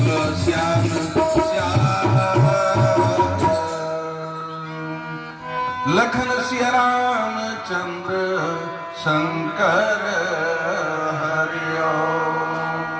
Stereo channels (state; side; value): identical; both; correlation 1.00